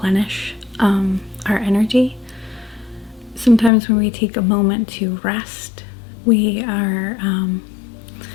our energy. Sometimes when we take a moment to rest, we are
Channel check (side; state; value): right; drops out; at 3.7 s